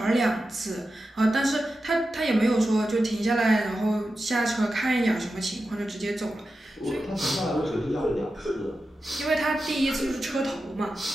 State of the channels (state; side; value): normal; both; correlation 0.91